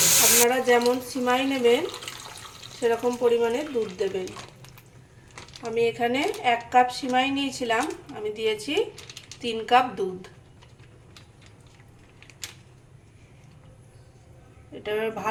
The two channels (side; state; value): both; identical; correlation 1.00